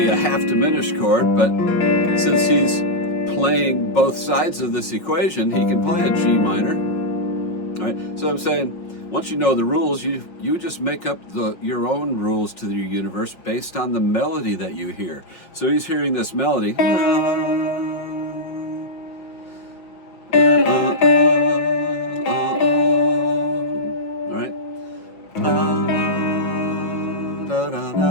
a half diminished chord, but since he's playing both sides of this equation, he can play a G minor. All right? So I'm saying, once you know the rules, you just make up your own rules to your universe based on the melody that you hear. So he's hearing this melody. All right.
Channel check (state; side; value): late; right; 5.5 ms